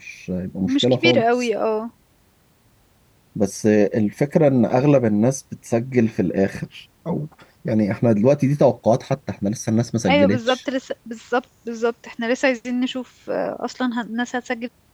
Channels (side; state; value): both; identical; correlation 1.00